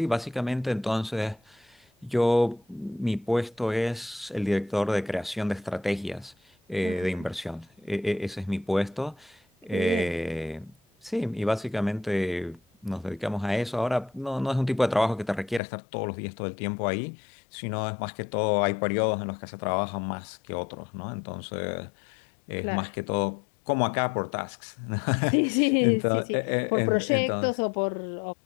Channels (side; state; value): right; drops out; at 15.6 s